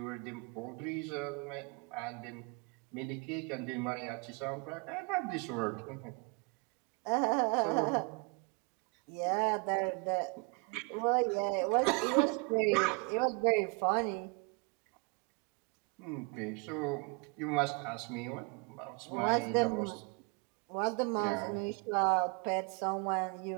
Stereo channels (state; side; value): quieter; left; 32.4 dB